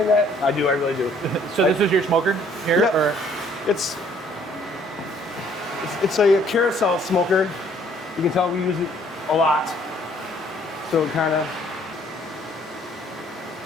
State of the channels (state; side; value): normal; both; correlation 0.61